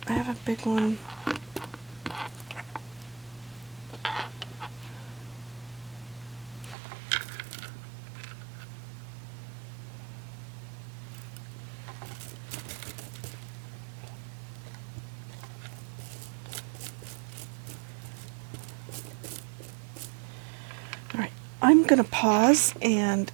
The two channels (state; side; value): drops out; left; at 6.8 s